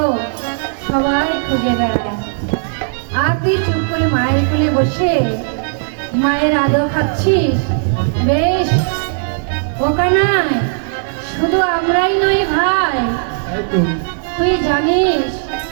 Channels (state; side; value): silent; left; digital silence